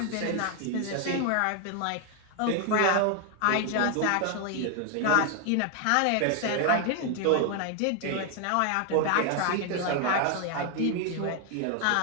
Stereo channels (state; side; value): different; both; correlation 0.00